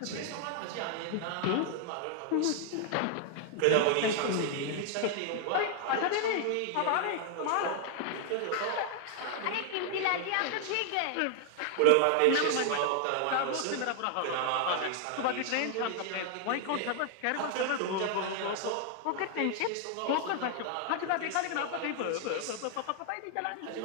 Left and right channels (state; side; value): different; both; correlation 0.00